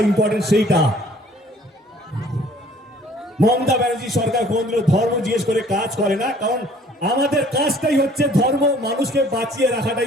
ইম্পর্টেন্ট সেইটা। মমতা ব্যানার্জি সরকার কোনদিন ধর্ম জিজ্ঞেস করে কাজ করে না, কারণ আমাদের কাজটাই হচ্ছে ধর্ম। মানুষকে বাঁচিয়ে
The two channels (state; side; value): normal; both; correlation 0.55